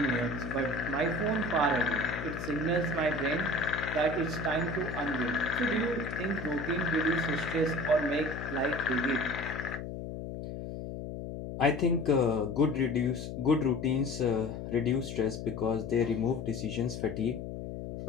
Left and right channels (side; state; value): left; noise; hum, 7 dB below the sound